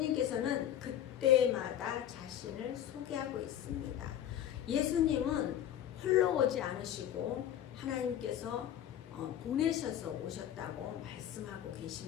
그때마다 자신을 소개하고 있습니다. 예수님은 홀로 오지 않으시고 하나님께서 보내셔서 오셨다고 말씀하고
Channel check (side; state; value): right; quieter; 10.8 dB